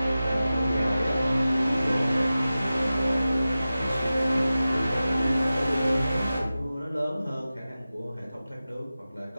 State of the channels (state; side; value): inverted; both; correlation -0.95